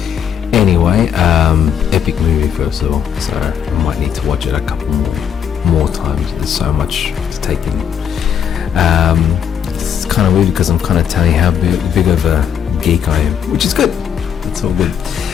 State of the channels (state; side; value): quieter; right; 8.4 dB